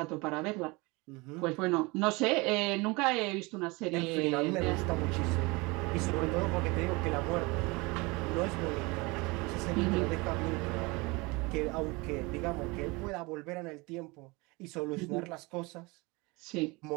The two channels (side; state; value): left; quieter; 25.3 dB